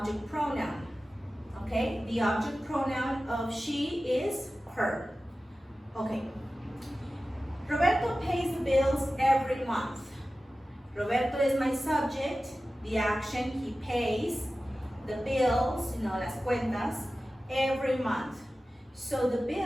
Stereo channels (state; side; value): normal; both; correlation 0.95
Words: pronoun, okay? The object pronoun of she is her. Okay. Roberto pays the bills every month. Roberto is my subject. The action, he pays the bills, las cuentas, every month. So the